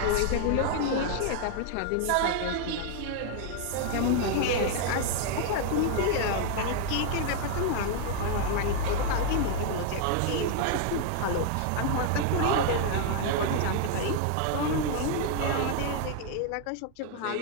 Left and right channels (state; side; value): different; both; correlation 0.00